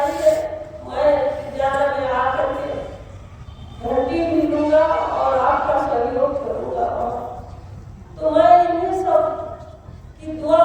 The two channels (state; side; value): identical; both; correlation 1.00